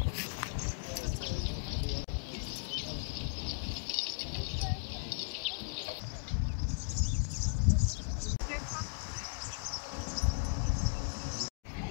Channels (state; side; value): silent; right; digital silence